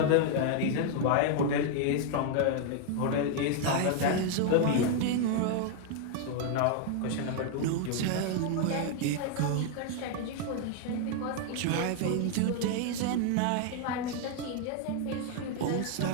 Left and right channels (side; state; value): both; different; correlation 0.00